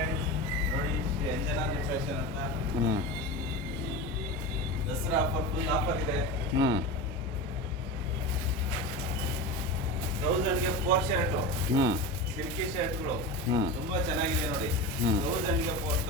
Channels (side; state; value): both; normal; correlation 0.26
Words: ನೋಡಿ Shri Anjanadri fashion ಅಂತ ಹ್ಞೂ ದಸರಾ ಆಫರ್, ಫುಲ್ ಆಫರ್ ಇದೆ. ಹ್ಞೂ 1000ಗೆ 4 ಶರ್ಟು, ಹ್ಞೂ ಸಿಲ್ಕಿ ಶರ್ಟ್ಗಳು ಹ್ಞೂ ತುಂಬಾ ಚೆನ್ನಾಗಿದೆ ನೋಡಿ. ಹ್ಮ್. 1000ಗೆ